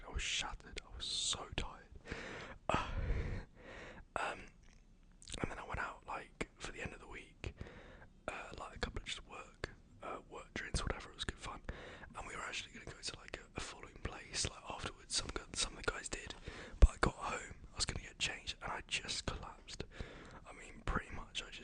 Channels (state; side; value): identical; both; correlation 1.00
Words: I was shattered. I was so tired. And then I went out like for the end of the week, like a couple of just work drinks, whatever. It was good fun, and we were actually going to go to like a following place like afterwards. Some of the guys did, but I got home, I was going to get changed, and I just collapsed. I mean, pretty much, I